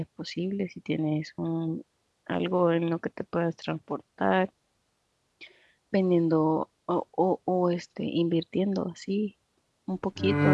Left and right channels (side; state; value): both; identical; correlation 1.00